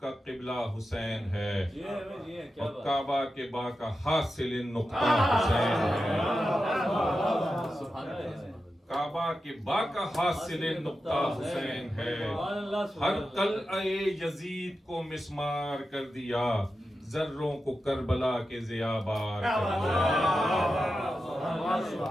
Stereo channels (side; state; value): both; normal; correlation 0.91